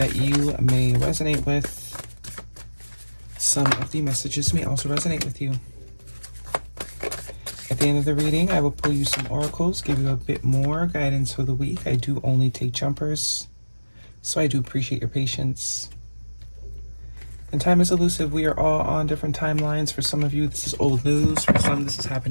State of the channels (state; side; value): inverted; both; correlation -1.00